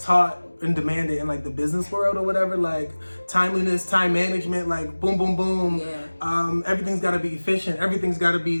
and demanded in like the business world or whatever, like timeliness, time management, like boom, boom, boom. Yeah. Everything's got to be efficient. Everything's got to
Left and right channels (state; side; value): inverted; both; correlation -1.00